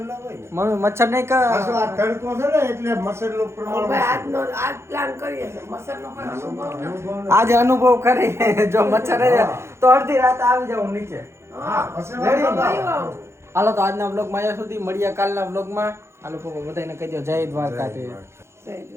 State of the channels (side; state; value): left; late; 0.13 ms